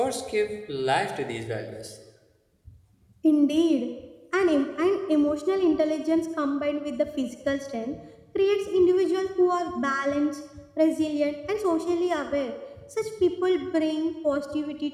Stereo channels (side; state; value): both; identical; correlation 1.00